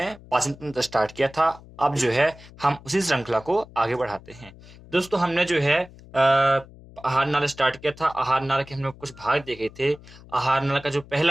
पाचन तंत्र स्टार्ट किया था। अब जो है हम उसी श्रृंखला को आगे बढ़ाते हैं। दोस्तों हमने जो है आहार नाल स्टार्ट किया था। आहार नाल के हमने कुछ भाग देखे थे। आहार नाल का जो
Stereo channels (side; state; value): left; noise; hum, 21 dB below the sound